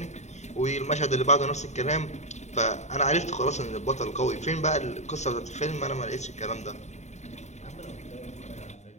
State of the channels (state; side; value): late; right; 0.33 ms